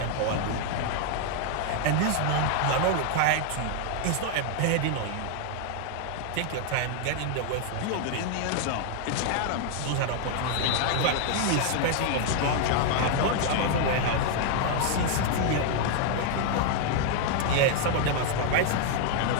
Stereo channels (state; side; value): different; both; correlation 0.00